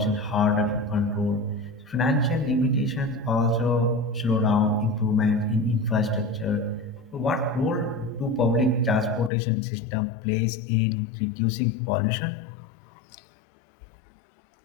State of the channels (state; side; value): drops out; right; at 9.3 s